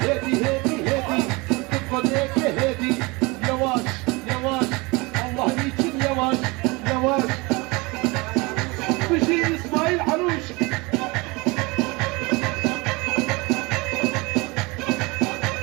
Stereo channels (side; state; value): left; quieter; 25.5 dB